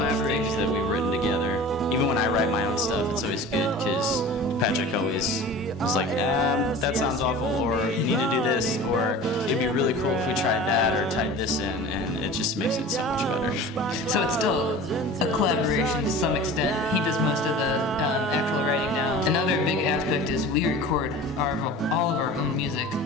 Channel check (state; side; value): normal; both; correlation 0.38